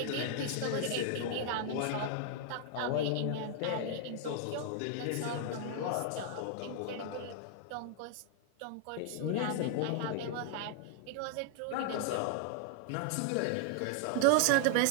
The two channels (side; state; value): both; different; correlation 0.00